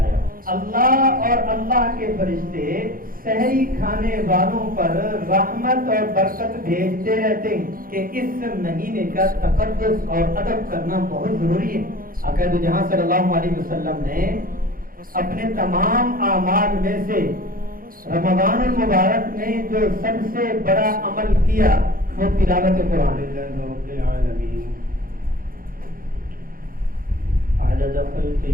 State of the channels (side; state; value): left; late; 0.41 ms